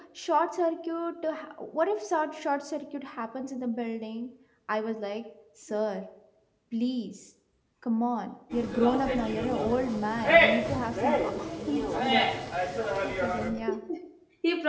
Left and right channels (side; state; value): both; identical; correlation 1.00